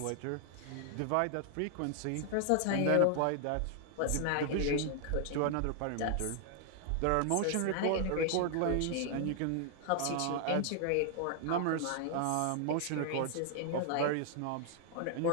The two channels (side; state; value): both; different; correlation 0.00